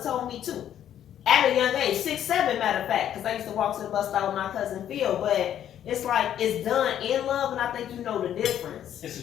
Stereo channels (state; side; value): quieter; right; 10.5 dB